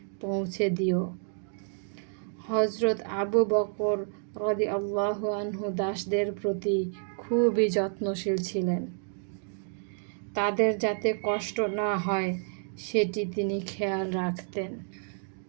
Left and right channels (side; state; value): left; silent; 58 dB below the other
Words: পৌঁছে দিও। হযরত আবু বকর রাদিয়াল্লাহু আনহু দাসদের প্রতি খুবই যত্নশীল ছিলেন। তাদের যাতে কষ্ট না হয় সেটি তিনি খেয়াল রাখতেন।